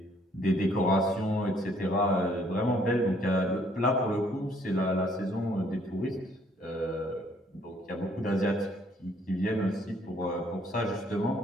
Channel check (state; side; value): normal; both; correlation 0.64